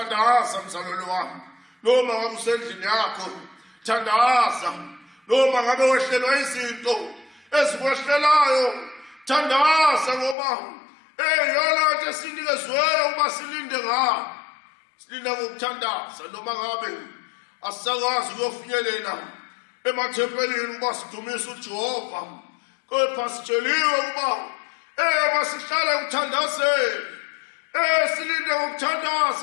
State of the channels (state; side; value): drops out; right; at 10.4 s